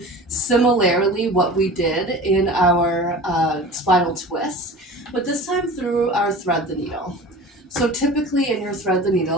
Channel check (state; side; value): normal; both; correlation 0.37